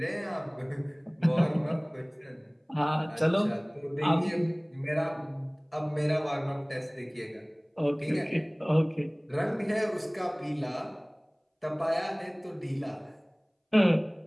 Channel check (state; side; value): identical; both; correlation 1.00